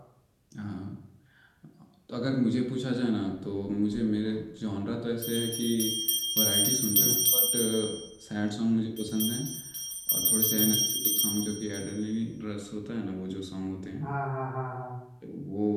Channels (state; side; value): identical; both; correlation 1.00